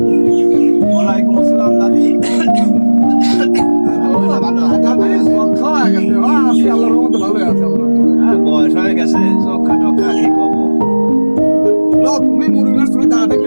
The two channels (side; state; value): both; inverted; correlation -1.00